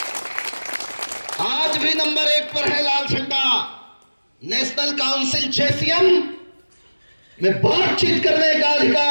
आज भी नंबर 1 पर है लाल झंडा। नेशनल काउंसिल JCM में बातचीत करने का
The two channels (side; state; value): both; inverted; correlation -1.00